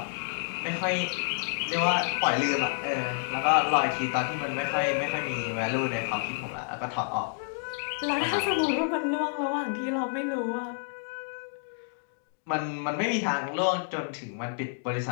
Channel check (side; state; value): right; silent; digital silence